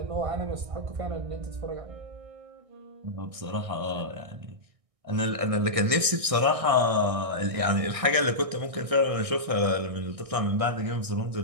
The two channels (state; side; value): late; left; 1.6 ms